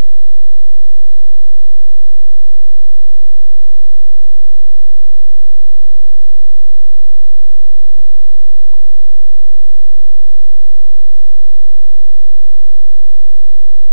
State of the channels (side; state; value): both; inverted; correlation -1.00